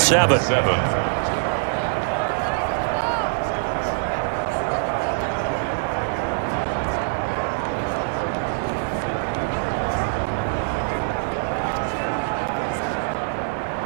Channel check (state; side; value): silent; left; 63 dB below the other